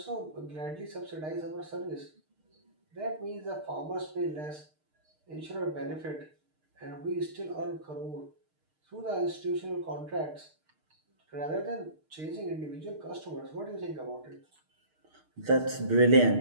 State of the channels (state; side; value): late; left; 6.5 ms